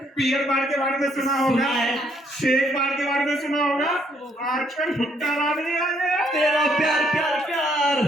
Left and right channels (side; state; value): both; normal; correlation 0.69